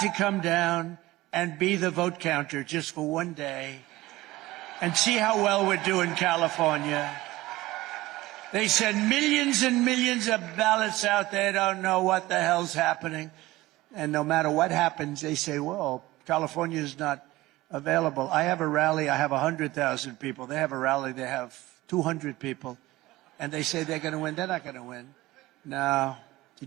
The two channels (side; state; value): left; quieter; 18.2 dB